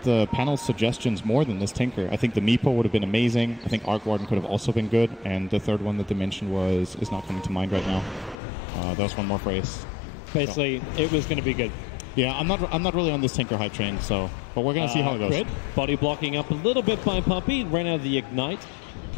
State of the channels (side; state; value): right; drops out; at 8.3 s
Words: the panel's suggestions more than this Tinker. I think the Meepo would have been amazing. I think Arc Warden could have also been good. And the third one that they mentioned is not coming to mind right now. That was one more phrase. Basically, it was going to be good. Yeah, I'm not really on this Tinker hype train, but we're going to see how it goes. Crit, body blocking up a little bit by Puppy, ran out of the Ignite.